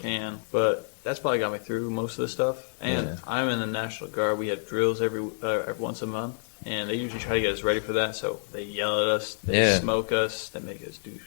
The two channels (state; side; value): silent; right; digital silence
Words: can. But that's probably got me through most of the stuff. And I'm in the National Guard. We have drills every once a month. And they usually try to get us ready for that, so they yell at us, they smoke us, they make us do